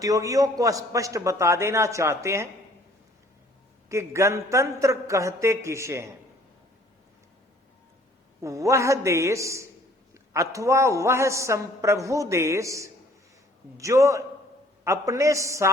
को स्पष्ट बता देना चाहते हैं कि गणतंत्र कहते किसे हैं। वह देश अथवा वह संप्रभु देश जो अपने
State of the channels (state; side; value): normal; both; correlation 0.57